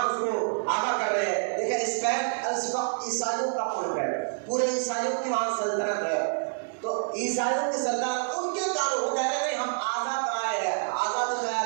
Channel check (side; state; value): left; silent; digital silence